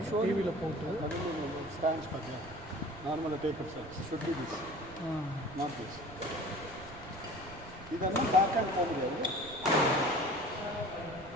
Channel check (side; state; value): right; noise; rumble, 17 dB below the sound